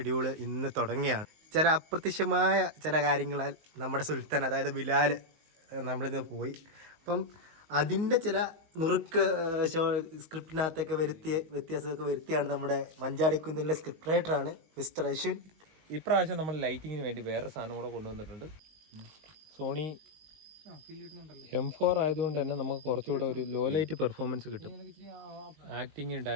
ഇന്ന് തുടങ്ങിയാണ്. ചില അപ്രത്യക്ഷമായ ചില കാര്യങ്ങളാൽ നമ്മുടെ സുൽത്താൻ അതായത് ബിലാൽ നമ്മളിന്ന് പോയി. അപ്പം അതിൻ്റെ ചില നുറുക്ക് സ്ക്രിപ്റ്റിനകത്തൊക്കെ വ്യത്യാസമൊക്കെ വരുത്തിയാണ് നമ്മുടെ മഞ്ചാടിക്കുന്നിലെ സ്ക്രിപ്റ്റ് റൈറ്ററാണ് മിസ്റ്റർ അശ്വിൻ. ഇപ്രാവശ്യം നമ്മൾ ലൈറ്റിങ്ങിന് വേണ്ടി വേറെ സാധനം കൂടെ കൊണ്ടുവന്നിട്ടുണ്ട്. സോണി M4 ആയതുകൊണ്ട് തന്നെ നമുക്ക് കുറച്ചുകൂടെ ഒരു ലോ ലൈറ്റ് പെർഫോമൻസ് കിട്ടും. ആക്ടിങ്ങും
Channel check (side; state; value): left; late; 19 ms